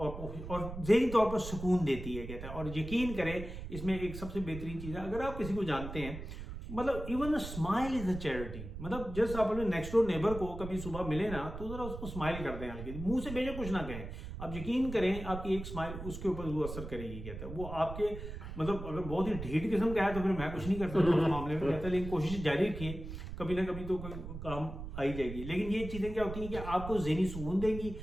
ذہنی طور پر سکون دیتی ہے کہتا ہے. اور یقین کریں اس میں ایک سب سے بہترین چیز ہے، اگر آپ کسی کو جانتے ہیں مطلب even smile is a charity, مطلب جس آپ اپنے نیکسٹ ڈور نیبر کو کبھی صبح ملے نا تو ذرا اس کو اسمائل کر دیں، ہلکی منہ سے بھیجے کچھ نہ کہیں، آپ یقین کریں آپ کی ایک اسمائل اس کے اوپر وہ اثر کرے گی کہتا ہے. وہ آپ کے مطلب اگر بہت ہی ڈھیٹ قسم کا ہے تو پھر میں کچھ نہیں کرتا اس معاملے میں کہتا ہے، لیکن کوشش جاری رکھیے، کبھی نہ کبھی تو کوئی کام آئی جائے گی. لیکن یہ چیزیں کیا ہوتی ہیں کہ آپ کو ذہنی سکون دیں گی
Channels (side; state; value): right; noise; rumble, 9 dB below the sound